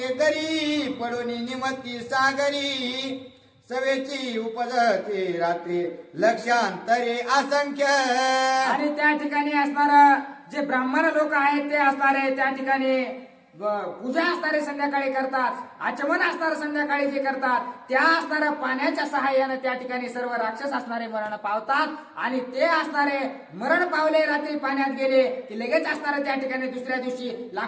पडोनी निमती सागरी सवेची उपजती रात्री लक्षांतरे असंख्य. आणि त्या ठिकाणी असणार जे ब्राह्मण लोक आहेत ते असणारे त्या ठिकाणी पूजा असणारे संध्याकाळी करतात. आचमन असणारे संध्याकाळी जे करतात त्या असणाऱ्या पाण्याच्या सहाय्याने त्या ठिकाणी सर्व राक्षस असणारे मरण पावतात आणि ते असणारे मरण पावले रात्री पाण्यात गेले की लगेच असणारे त्या ठिकाणी दुसऱ्या दिवशी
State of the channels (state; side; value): identical; both; correlation 1.00